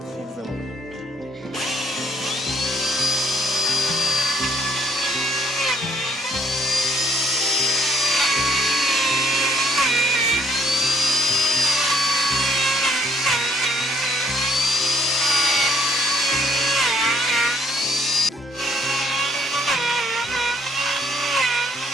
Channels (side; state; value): both; normal; correlation 0.65